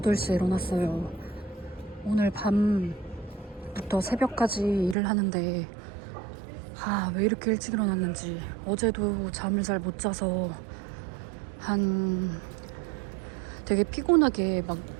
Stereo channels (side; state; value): left; drops out; at 5.0 s